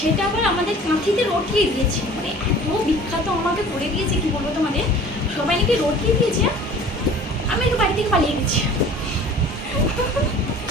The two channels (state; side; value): normal; both; correlation 0.46